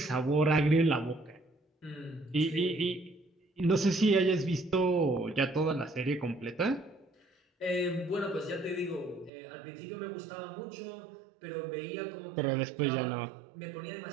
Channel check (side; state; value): left; drops out; at 9.3 s